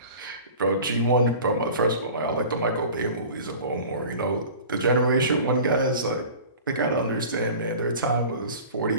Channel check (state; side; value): inverted; both; correlation -0.40